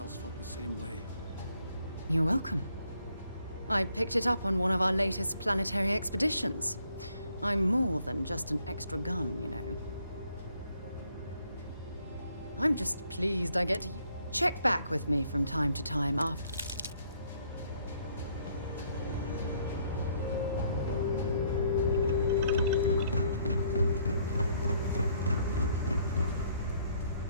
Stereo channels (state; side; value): inverted; both; correlation -0.68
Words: felt the same way. You're welcome. I picked it up on one of our latest planetary expeditions. I'm more than just an extra gun, you know. I'm just pleased I get to check back with me from time to time after.